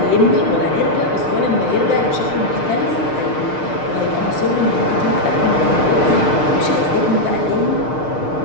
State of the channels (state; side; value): late; right; 6.6 ms